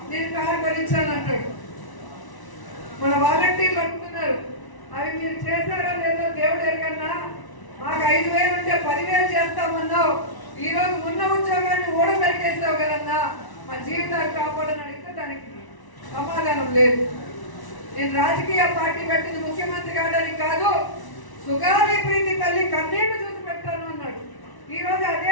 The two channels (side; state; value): right; late; 1.0 ms